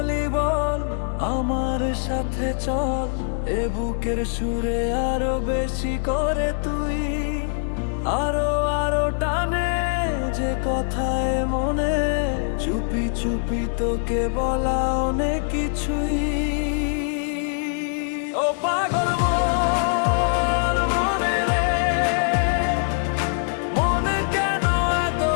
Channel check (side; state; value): right; silent; digital silence